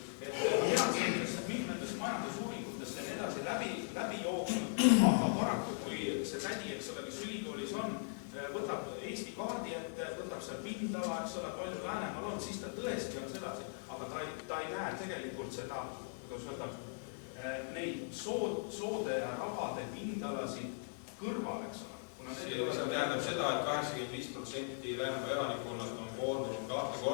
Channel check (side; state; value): right; silent; digital silence